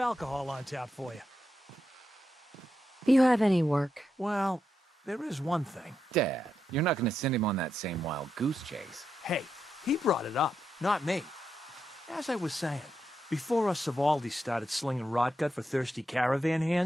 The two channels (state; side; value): normal; both; correlation 0.85